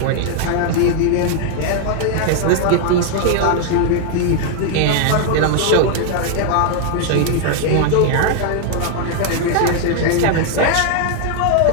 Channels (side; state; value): both; different; correlation 0.00